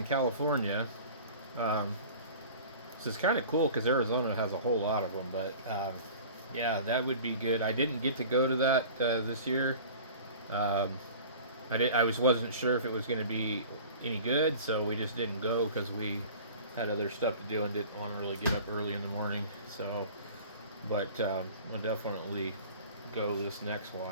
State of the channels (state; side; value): inverted; both; correlation -0.42